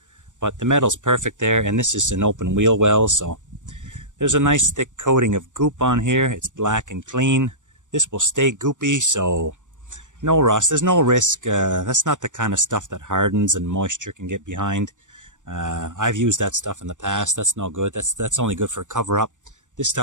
but the metal's perfect there. And this is an open wheel well, so there's a nice thick coating of goop on here. It's black and clean. This will stay goopy, so no rust. There's no risk. That's not the kind of stuff that hardens and moisture can get behind. I've used that stuff in the past. That's no good. That's only good for a cover up. This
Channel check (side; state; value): left; late; 0.86 ms